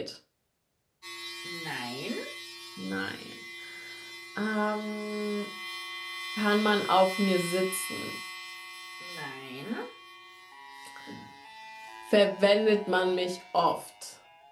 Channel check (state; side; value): identical; both; correlation 1.00